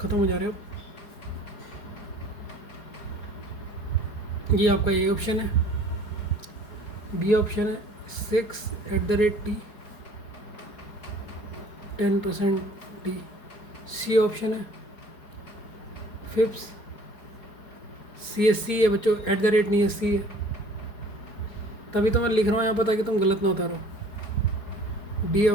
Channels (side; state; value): right; late; 4.8 ms